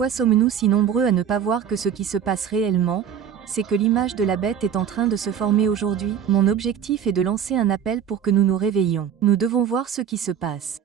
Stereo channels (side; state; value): left; quieter; 8.4 dB